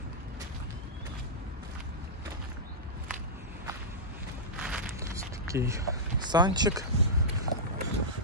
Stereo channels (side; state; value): both; normal; correlation -0.12